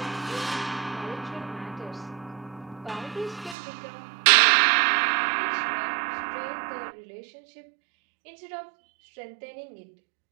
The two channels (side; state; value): left; drops out; at 3.6 s